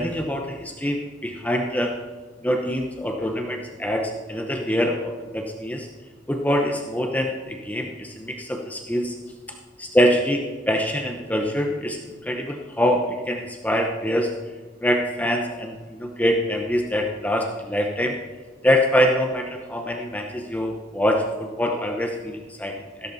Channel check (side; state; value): both; normal; correlation 0.68